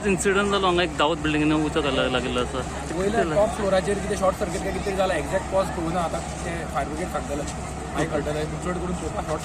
इन्सिडंट जालो हांगा एक दावत बिल्डिंगेन उचो लागलो आसा वयल्या टॉप फ्लोराचेर कितें शॉर्ट सर्किट काय कितें जाला एक्झॅक्ट कॉज कळूना आतां ते फायर ब्रिगेड सांगतले मागीर कळटलें चड करून चोवपाक शॉर्ट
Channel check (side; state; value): both; identical; correlation 1.00